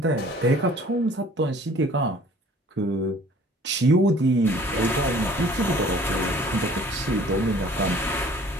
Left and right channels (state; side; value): normal; both; correlation 0.52